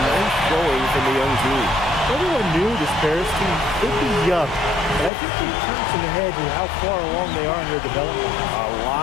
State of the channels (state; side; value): drops out; right; at 5.1 s